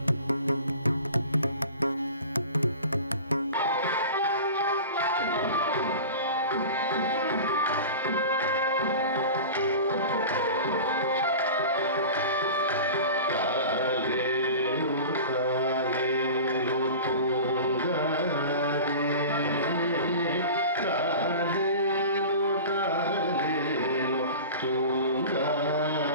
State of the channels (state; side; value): inverted; both; correlation -0.35